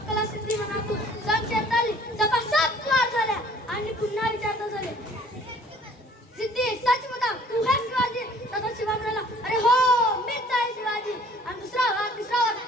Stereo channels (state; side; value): normal; both; correlation 0.54